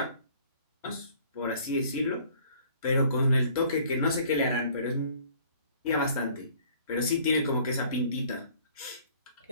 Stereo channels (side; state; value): both; inverted; correlation -0.55